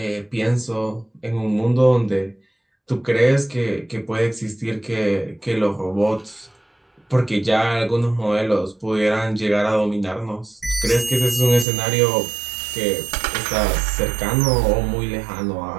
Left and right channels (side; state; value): left; drops out; at 11.7 s